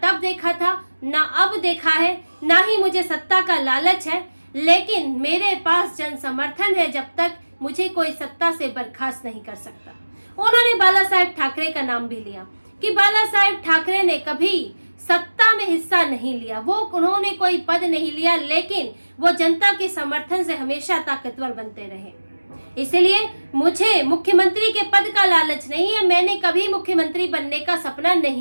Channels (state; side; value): inverted; both; correlation -1.00